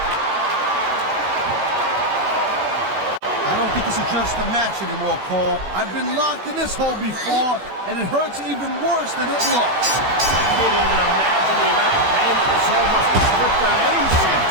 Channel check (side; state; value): left; late; 16 ms